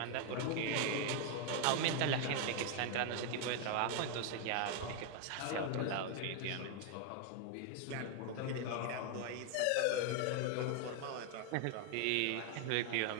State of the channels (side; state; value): both; different; correlation 0.00